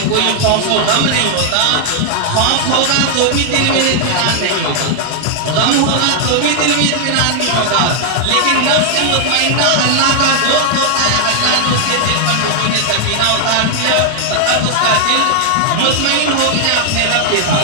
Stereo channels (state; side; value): different; both; correlation 0.00